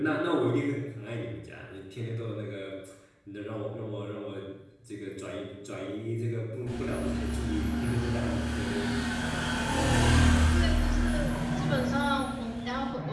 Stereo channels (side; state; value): both; identical; correlation 1.00